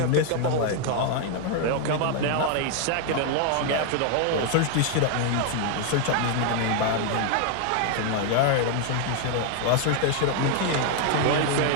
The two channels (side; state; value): both; different; correlation 0.00